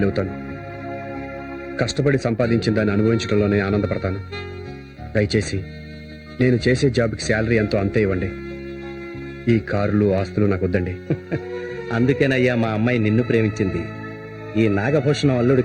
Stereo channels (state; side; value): identical; both; correlation 1.00